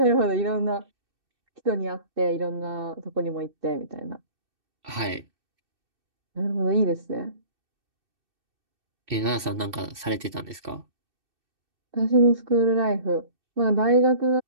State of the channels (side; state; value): left; late; 2.6 ms